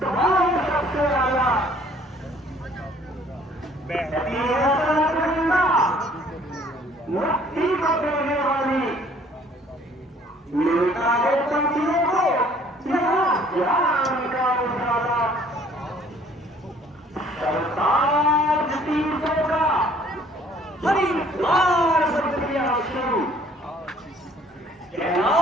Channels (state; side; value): normal; both; correlation 0.58